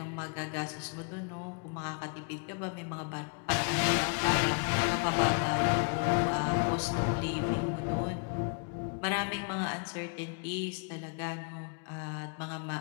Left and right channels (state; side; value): quieter; right; 39.7 dB